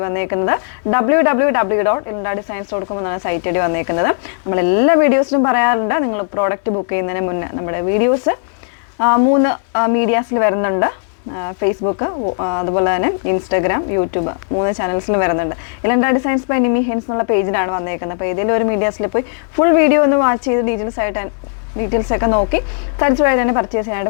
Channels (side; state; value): right; silent; digital silence